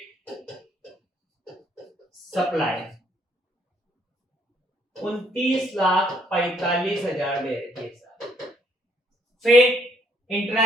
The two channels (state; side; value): normal; both; correlation 0.68